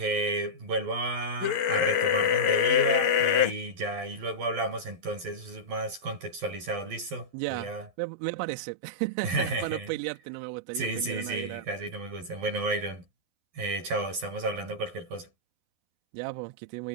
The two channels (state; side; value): late; left; 12 ms